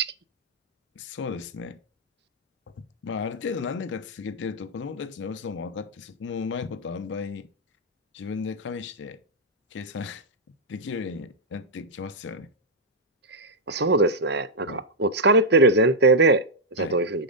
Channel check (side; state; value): both; normal; correlation -0.05